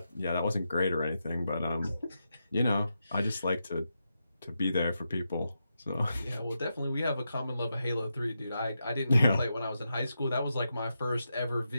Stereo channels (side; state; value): both; inverted; correlation -0.87